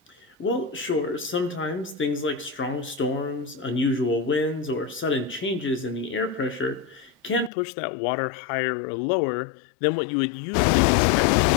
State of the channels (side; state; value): right; drops out; at 7.5 s